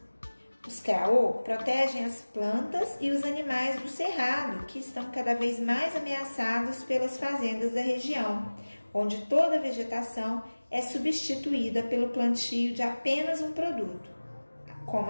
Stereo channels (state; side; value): inverted; both; correlation -1.00